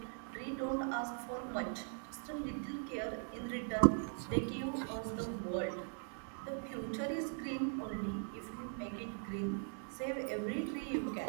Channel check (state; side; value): silent; left; 51 dB below the other